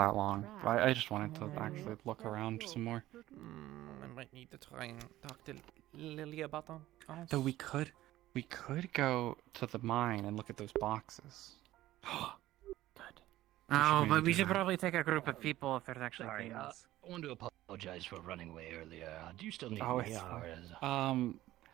long. But I just wanted to actually look around some more. I might need to try and talk to Lily about them. So we could go to the mine and look at those boxes. Oh, maybe but we do should that. probably take a group of people if there's actually Sorry, things. I want to apologize for running away earlier. Do you still need Oh, me? it's Or is...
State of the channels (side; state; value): left; quieter; 15.3 dB